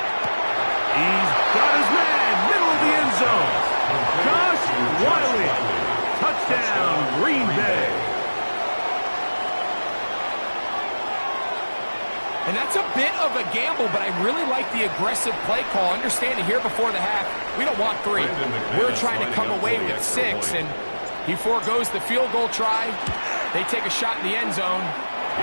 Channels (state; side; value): inverted; both; correlation -1.00